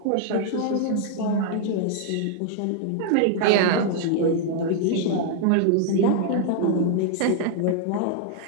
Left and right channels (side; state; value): both; different; correlation 0.00